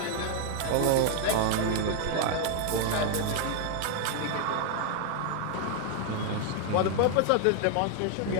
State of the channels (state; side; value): different; both; correlation 0.00